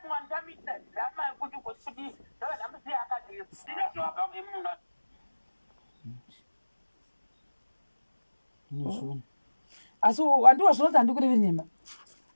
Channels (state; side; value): inverted; both; correlation -1.00